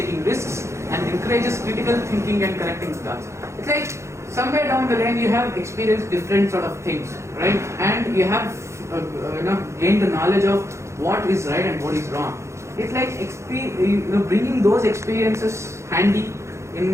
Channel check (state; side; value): late; left; 0.14 ms